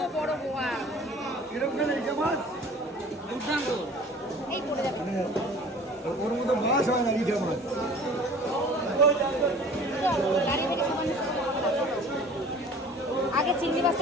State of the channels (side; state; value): both; normal; correlation 0.46